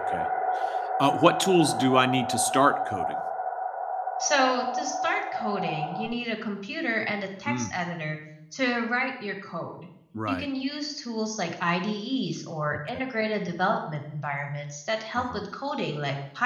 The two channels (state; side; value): identical; both; correlation 1.00